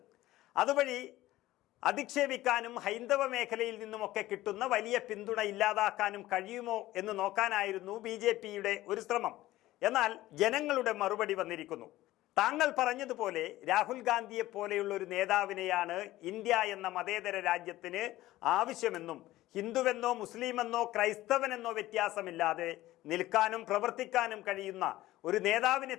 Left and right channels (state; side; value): quieter; right; 16.2 dB